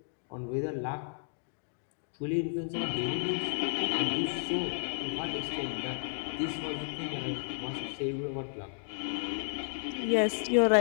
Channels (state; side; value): silent; right; digital silence